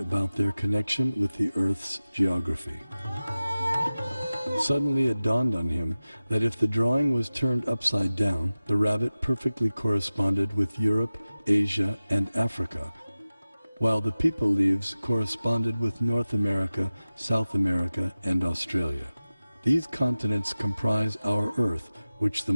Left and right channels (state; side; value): inverted; both; correlation -0.97